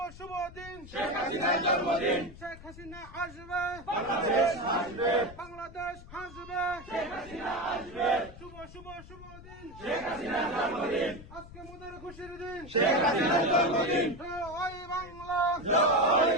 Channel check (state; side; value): noise; left; rumble, 17 dB below the sound